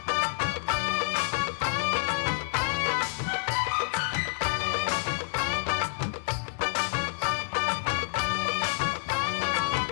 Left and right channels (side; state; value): right; silent; 59 dB below the other